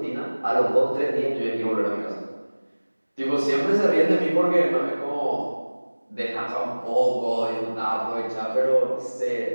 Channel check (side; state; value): both; inverted; correlation -1.00